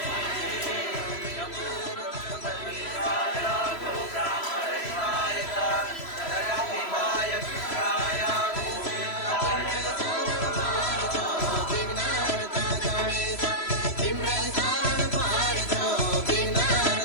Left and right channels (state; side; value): late; right; 3.0 ms